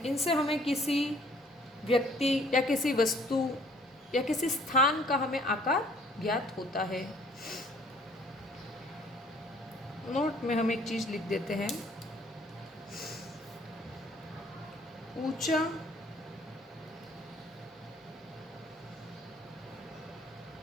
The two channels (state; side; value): normal; both; correlation 0.58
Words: इनसे हमें किसी व्यक्ति या किसी वस्तु या किसी स्थान का हमें आकार ज्ञात होता है। नोट में हम एक चीज लिख देते हैं, ऊंचा